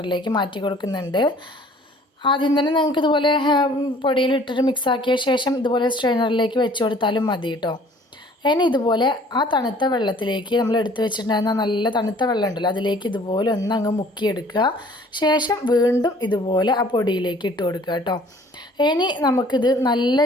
മാറ്റി കൊടുക്കുന്നുണ്ട്. ആദ്യം തന്നെ നിങ്ങൾക്ക് ഇതുപോലെ പൊടിയിലിട്ടിട്ട് മിക്സാക്കിയ ശേഷം ഇതുപോലെ സ്ട്രെയിനറിലേക്ക് വെച്ച് കൊടുത്താലും മതി കേട്ടോ. ഇനി ഇതുപോലെ ആ തണുത്ത വെള്ളത്തിലേക്ക് നമ്മൾ എടുത്തു വെച്ചിട്ടുണ്ടായിരുന്ന നല്ല തണുത്ത വെള്ളം ഉണ്ടല്ലോ, അതിലേക്ക് ഇതുപോലെ ഒന്ന് അങ്ങ് മുക്കിയെടുക്കുക. ശേഷം വീണ്ടും ഇതുപോലെ ആ പൊടിയിലേക്ക് ഇട്ട് കൊടുക്കുക കേട്ടോ. ഇനി നമുക്കിത്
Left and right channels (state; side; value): normal; both; correlation 0.54